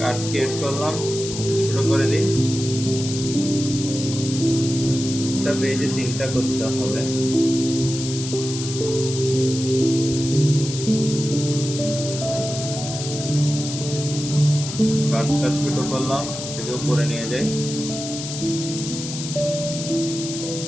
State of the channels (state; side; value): noise; left; hiss, 8 dB below the sound